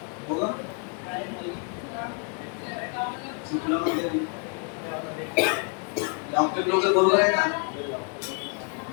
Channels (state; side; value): quieter; right; 36.6 dB